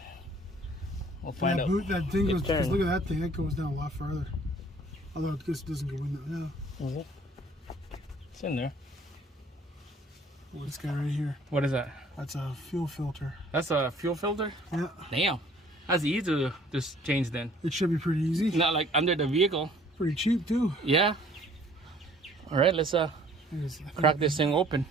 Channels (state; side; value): normal; both; correlation 0.56